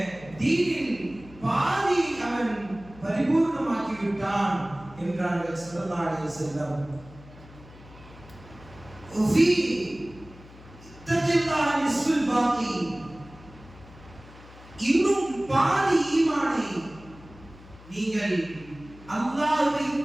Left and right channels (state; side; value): noise; left; hum, 20 dB below the sound